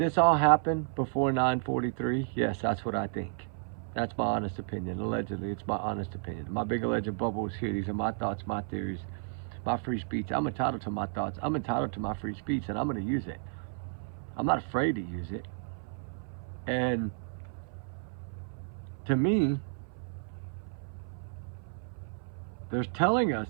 all happen before 9/43? Yes, that's what I think. That's my honest opinion. Allegedly, it's my honest opinion. My big alleged bubble is here. These are my thoughts, my theories, my free speech. I'm entitled to my thoughts. I'm entitled to my free speech, and I'm going to use it. I'm not afraid to use it. And to me, they're telling us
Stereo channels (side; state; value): left; silent; 56 dB below the other